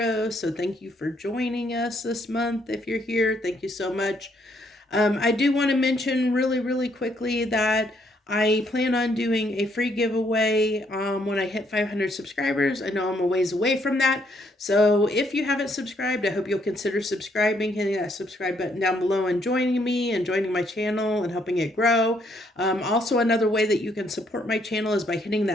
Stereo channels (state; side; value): normal; both; correlation 0.71